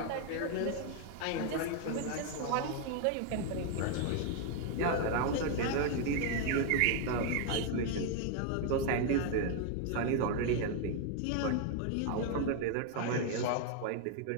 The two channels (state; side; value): different; both; correlation 0.01